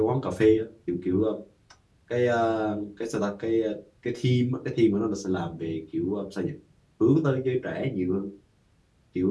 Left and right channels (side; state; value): both; identical; correlation 1.00